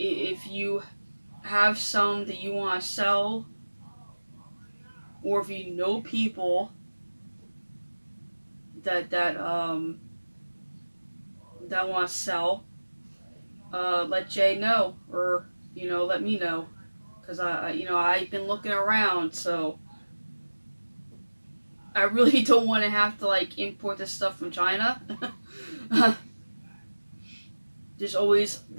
you have some that you want to sell, or if you know people that want to sell, let Jay know, or you know, let me know, because you know, I've been looking around, so I really don't want to have to like import this stuff from China. There's always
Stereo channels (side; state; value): both; inverted; correlation -1.00